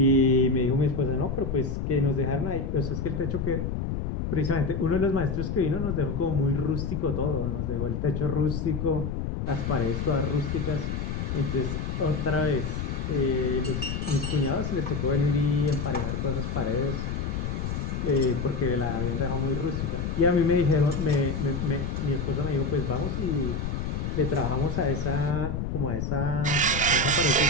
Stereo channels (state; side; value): noise; left; rumble, 2 dB below the sound